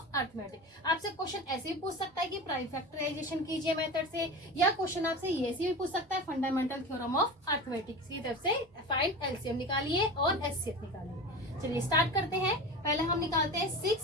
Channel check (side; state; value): both; normal; correlation 0.30